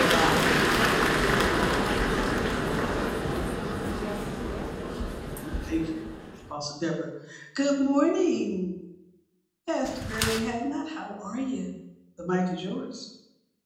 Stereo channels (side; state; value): both; identical; correlation 1.00